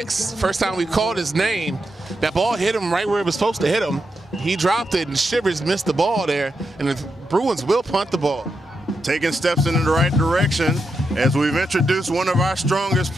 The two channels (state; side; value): normal; both; correlation 0.85